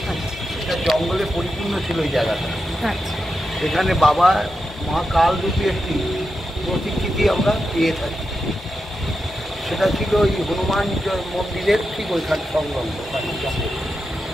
এটা জঙ্গলে পরিপূর্ণ ছিল এই জায়গাটা। এখানে বাবা মা কাল রূপী একটি প্রতিকৃতি আমরা পেয়ে থাকি। সেটা ছিল ওই হনুমান মন্দিরের ঠিক ওইখানে সংলগ্ন জঙ্গল।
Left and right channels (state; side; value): normal; both; correlation 0.88